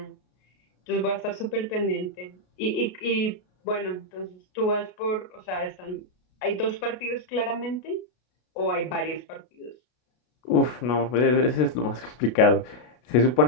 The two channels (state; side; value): late; right; 33 ms